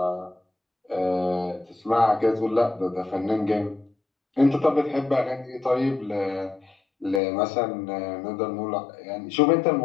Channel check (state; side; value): drops out; right; at 7.2 s